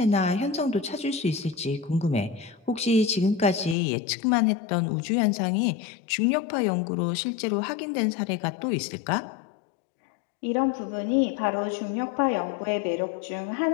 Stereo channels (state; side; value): drops out; right; at 3.8 s